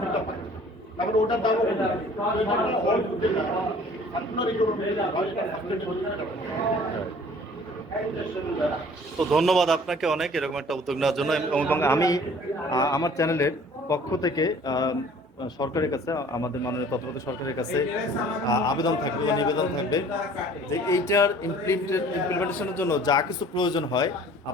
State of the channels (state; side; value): normal; both; correlation 0.51